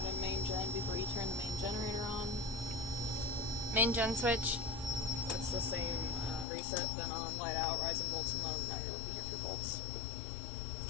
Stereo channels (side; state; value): right; drops out; at 6.5 s